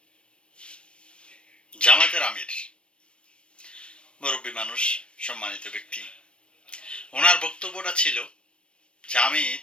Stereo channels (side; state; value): right; late; 0.058 ms